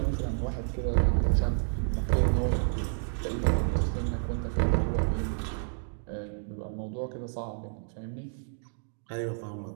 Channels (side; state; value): left; silent; digital silence